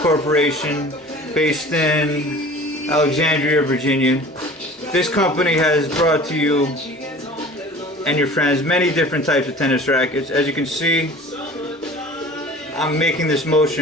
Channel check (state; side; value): normal; both; correlation 0.43